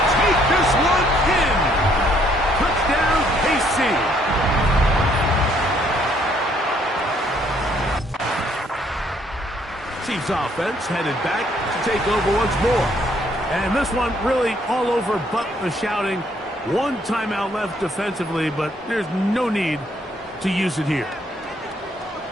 take this one in. Touchdown, KC. Chiefs offense headed back to take over once more. And this one really all over but the shouting. One timeout left defensively, but there's no need to use it here.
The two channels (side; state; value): both; normal; correlation 0.67